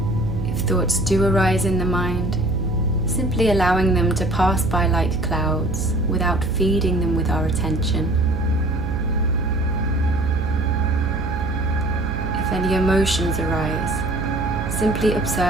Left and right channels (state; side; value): noise; right; hum, 5 dB below the sound